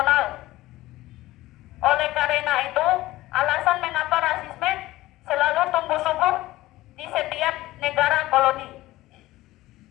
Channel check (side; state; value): right; quieter; 17.3 dB